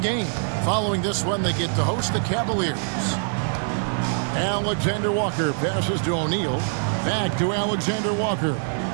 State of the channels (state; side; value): silent; left; 63 dB below the other